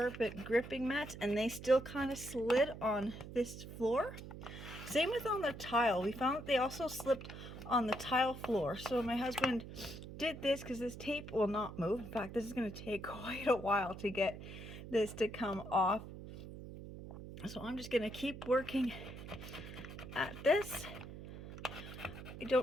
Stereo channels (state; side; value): noise; right; hum, 11 dB below the sound